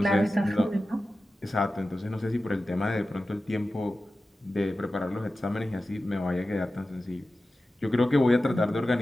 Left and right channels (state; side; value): normal; both; correlation 0.94